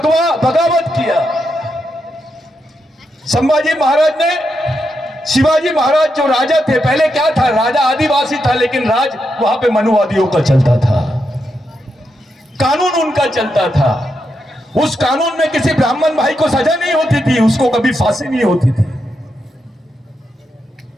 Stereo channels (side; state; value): both; normal; correlation 0.84